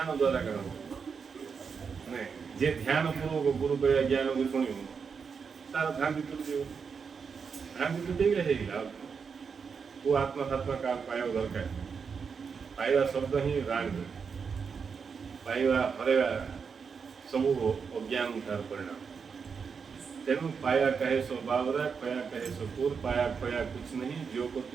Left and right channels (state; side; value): quieter; left; 5.9 dB